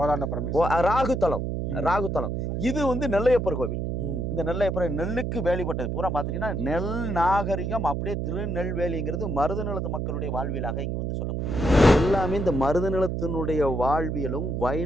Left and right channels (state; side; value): noise; right; hum, 2 dB below the sound